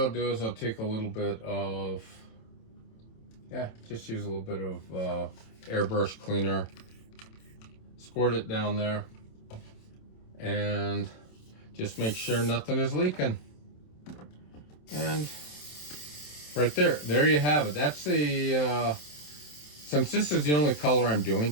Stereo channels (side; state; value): right; late; 27 ms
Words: do is I'll take a little bit of, just use a little bit of airbrush cleaner. Squirt it down there. And just make sure nothing is leaking. And right there you have it. That's the, since this is the only color I'm doing